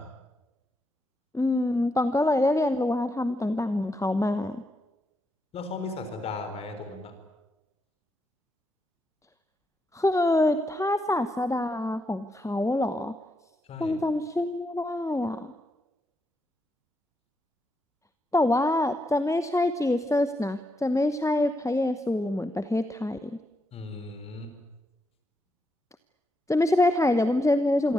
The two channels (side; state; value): both; normal; correlation 0.83